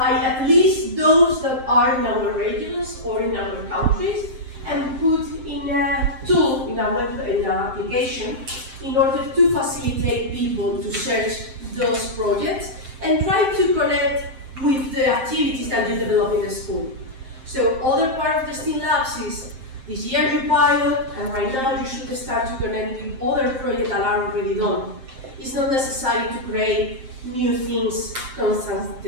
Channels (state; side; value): late; left; 7.6 ms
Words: at least those that are in our regions or in our countries and put in a tool, in an application, in order to facilitate people to search those projects and try to connect with the activities that you develop in the school. So other part of the STEAM Labs is this year you pilot, and right now you should start to connect with other projects that are already done. It's not necessary to create new things